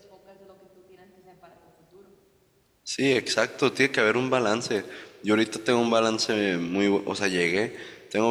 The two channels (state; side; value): identical; both; correlation 1.00